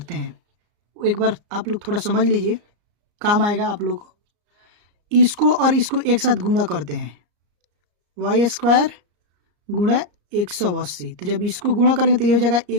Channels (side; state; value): left; late; 34 ms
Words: हैं। एक बार आप लोग थोड़ा समझ लीजिए, काम आएगा आप लोग को। इसको और इसको एक साथ गुणा करते हैं, वाई स्क्वायर गुणा 180। तो जब इसको गुणा करेंगे तो ये हो जाएगा